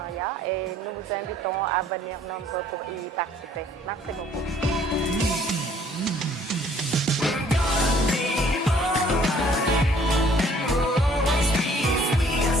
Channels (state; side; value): normal; both; correlation 0.58